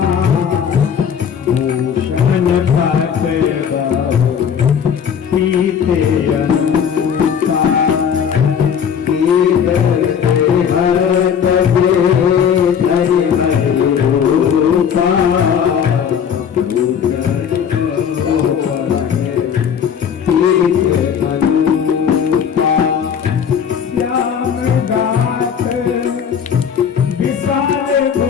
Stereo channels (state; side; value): quieter; right; 7.7 dB